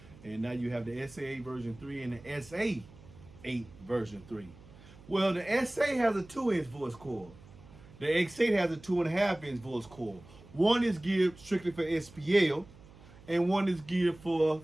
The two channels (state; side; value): noise; right; hum, 22 dB below the sound